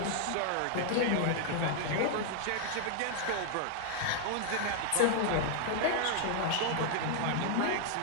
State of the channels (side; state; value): both; different; correlation 0.00